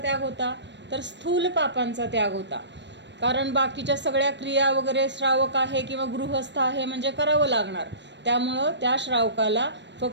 होता, तर स्थूल पापांचा त्याग होता. कारण बाकीच्या सगळ्या क्रिया वगैरे श्रावक आहे किंवा गृहस्थ आहे म्हणजे करावं लागणार. त्यामुळं त्या श्रावकाला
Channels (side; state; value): left; late; 0.52 ms